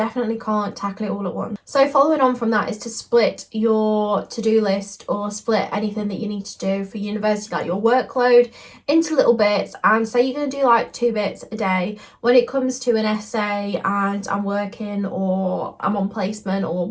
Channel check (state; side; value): identical; both; correlation 1.00